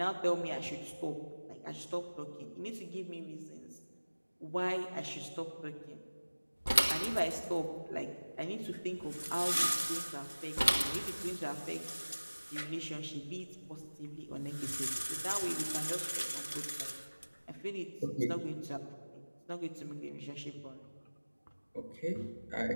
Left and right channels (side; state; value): both; inverted; correlation -1.00